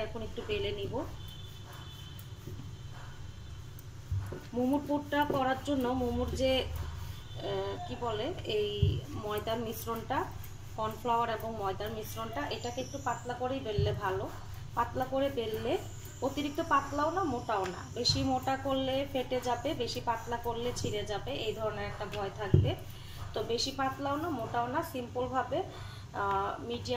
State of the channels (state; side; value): identical; both; correlation 1.00